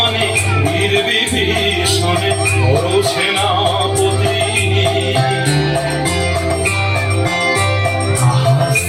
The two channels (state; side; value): identical; both; correlation 1.00